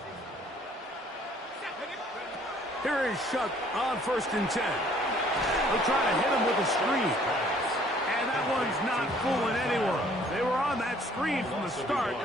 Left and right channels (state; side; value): normal; both; correlation 0.59